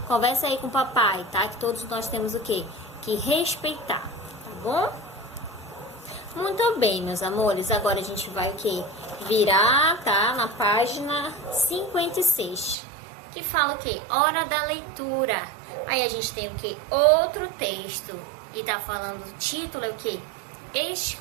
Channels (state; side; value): drops out; left; at 12.8 s